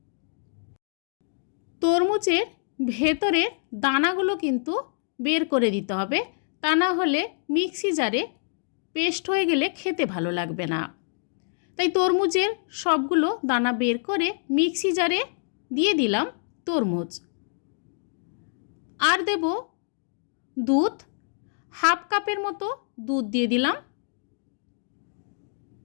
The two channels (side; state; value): right; silent; digital silence